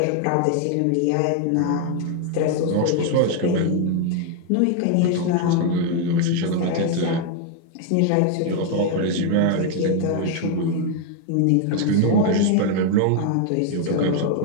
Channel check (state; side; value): different; both; correlation 0.01